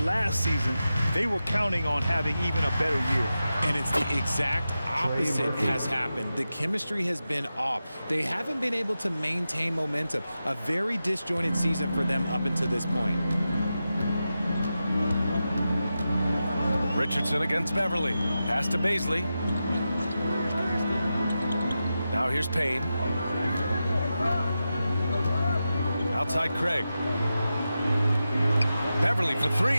last season, they were counting on having even a better year. And it's the exact opposite has happened. The chemistry has been off. They haven't been able to maintain momentum. A very disjointed season for them up until this point. Richardson against Beverly. Pass to Baisley. Now here's Payne. Outside Craig. Beverly for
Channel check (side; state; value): both; inverted; correlation -0.91